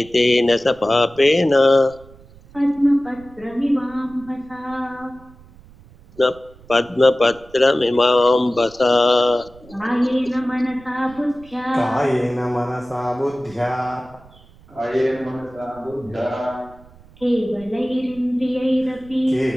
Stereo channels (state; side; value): noise; right; rumble, 24 dB below the sound